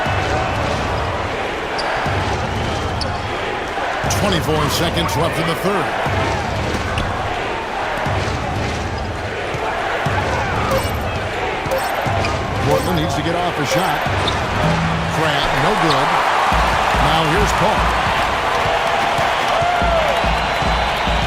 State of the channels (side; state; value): both; identical; correlation 1.00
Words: 24 seconds left in the third. Portland needs to get off a shot. Crabbe, no good. Now here's Paul.